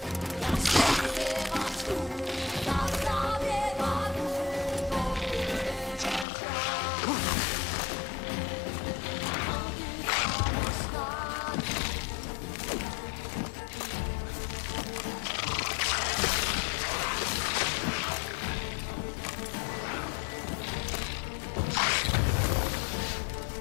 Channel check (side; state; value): right; drops out; at 6.2 s